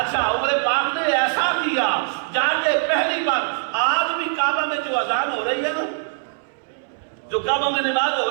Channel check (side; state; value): left; silent; 64 dB below the other